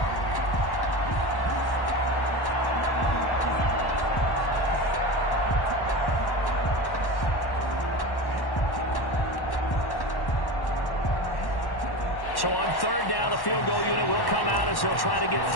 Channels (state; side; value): late; right; 1.1 ms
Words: So on 3rd down, the field goal unit will come out as he'll try to get